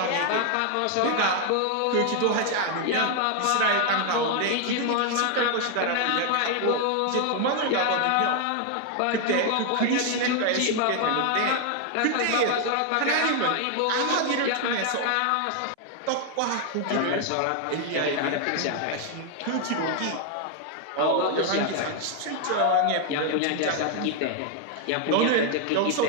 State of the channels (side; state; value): both; different; correlation 0.00